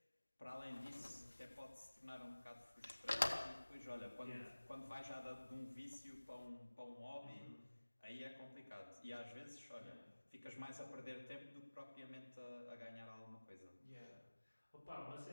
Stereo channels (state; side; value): inverted; both; correlation -1.00